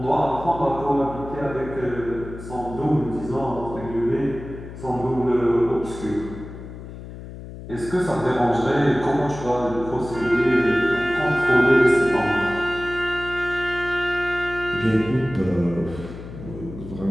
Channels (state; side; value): noise; left; hum, 12 dB below the sound